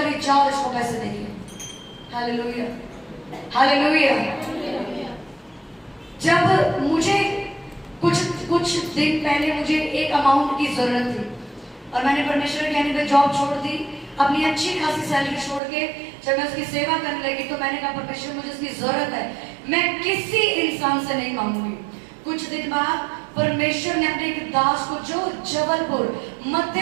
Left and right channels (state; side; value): drops out; left; at 15.6 s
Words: जाओ इसको पैसे देंगे। Hallelujah, hallelujah. जब मुझे कुछ दिन पहले मुझे एक अमाउंट की जरूरत थी और मैंने परमेश्वर के कहने पे जॉब छोड़ दी, अपनी अच्छी खासी सैलरी छोड़ के जब मैं उसकी सेवा करने लगी तो मैंने कहा, परमेश्वर मुझे उसकी जरूरत है, मैं किसी इंसान से नहीं मांगूंगी। कुछ दिन बाद परमेश्वर ने अपने एक दास को, जो जबलपुर